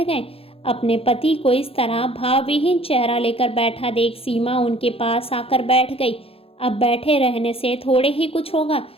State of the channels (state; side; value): late; right; 0.27 ms